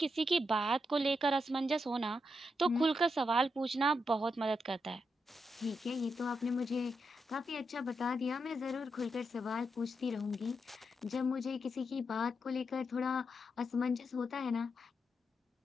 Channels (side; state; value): both; normal; correlation 0.83